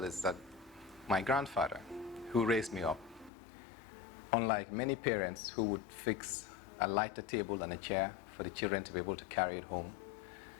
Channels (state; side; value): drops out; right; at 3.3 s